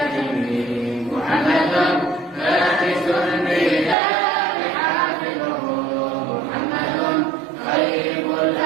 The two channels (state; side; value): drops out; left; at 4.0 s